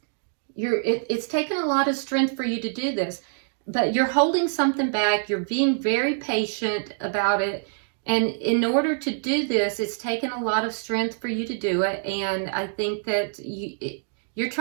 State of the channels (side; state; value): left; silent; digital silence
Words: It's taken a lot of strength for you to do this, but you're holding something back. You're being very patient about it. And in order to do this, it's taken a lot of strength for you to do it. And I think that you're